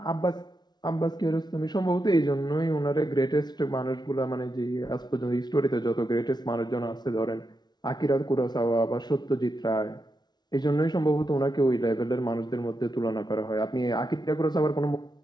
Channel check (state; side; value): late; right; 0.20 ms